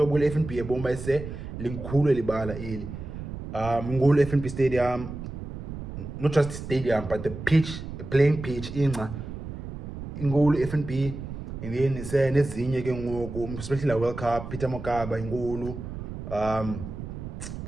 FNB ebomba ise linkhulu libala ili ngulu FNB Stadium, not just stadium but the pitch, the playing pitch inqa ingulu FNB. And then ise nezinye ke ngoku especially la World Cup Peter Mokaba ingulu.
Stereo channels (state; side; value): noise; right; rumble, 9 dB below the sound